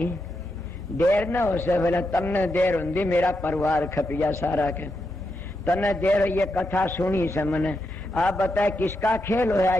देर न हो से। बोला तमने देर होंगी, मेरा परिवार खपिया सारा के, तने देर ये कथा सुनी से मैंने। आप बताए किसका खेल होया,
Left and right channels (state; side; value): noise; left; hum, 16 dB below the sound